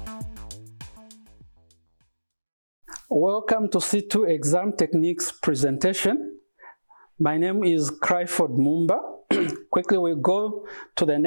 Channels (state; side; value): inverted; both; correlation -1.00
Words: to C2 Exam Techniques presentation. My name is Cryford Mumba. Quickly we'll go to the